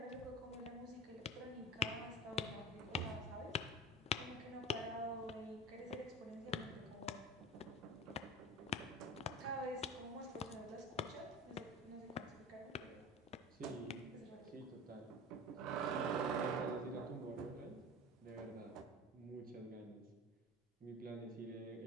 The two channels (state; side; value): normal; both; correlation 0.33